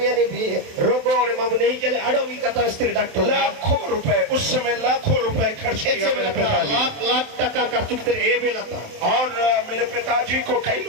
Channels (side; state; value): left; late; 27 ms